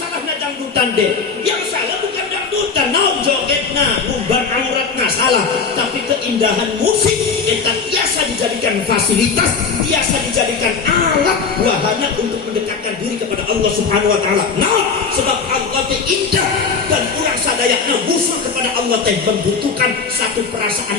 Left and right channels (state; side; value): quieter; right; 5.2 dB